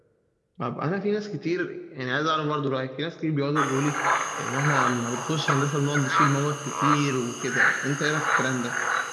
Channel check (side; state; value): both; identical; correlation 1.00